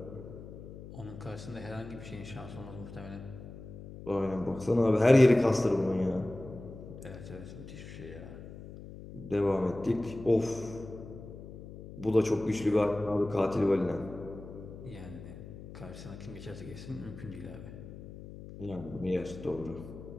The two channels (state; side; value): noise; left; hum, 13 dB below the sound